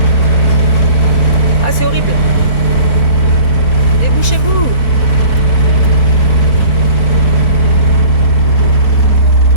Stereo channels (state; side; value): late; right; 3.3 ms